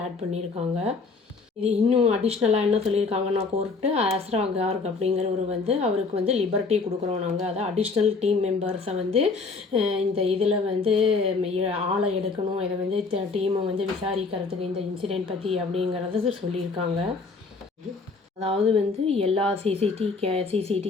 ஆட் பண்ணியிருக்காங்க. இது இன்னும் அடிஷ்னலாக என்ன சொல்லியிருக்காங்கன்னா கோர்ட்டு, அஸ்ரா கார்க் அப்படிங்கிறவர் அவருக்கு லிபர்ட்டி கொடுக்குறோம் நாங்கள், அதாவது அடிஷ்னல் டீம் மெம்பர்ஸை இந்த இதில் ஆளை எடுக்கணும், இதை டீமை விசாரிக்கிறதுக்கு இந்த இன்சிடெண்ட் பற்றி அப்படிங்கிறத சொல்லியிருக்காங்க. அதாவது எல்லா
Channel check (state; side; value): quieter; right; 4.2 dB